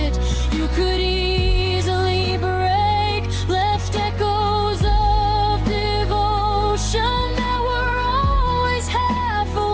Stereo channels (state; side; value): identical; both; correlation 1.00